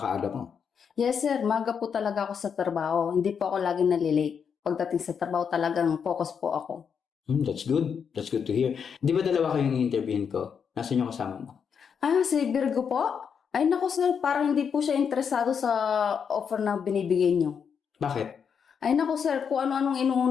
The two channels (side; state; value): right; quieter; 6.9 dB